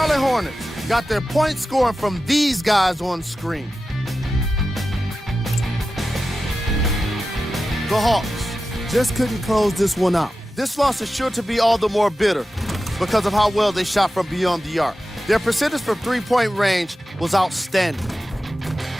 Hornets got their point scoring from these guys on screen. The Hawks just couldn't close this one out. This loss is sure to be all the more bitter because of how well they shot from beyond the arc. Their percentage from three-point range was outstanding.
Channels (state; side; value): normal; both; correlation 0.93